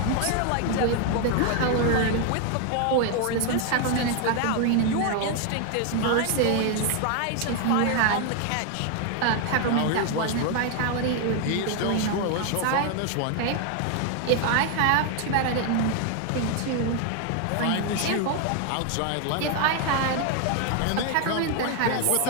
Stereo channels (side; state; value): both; different; correlation 0.01